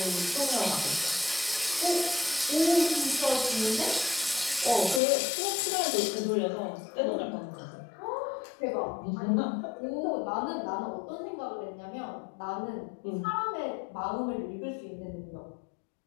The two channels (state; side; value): drops out; right; at 5.0 s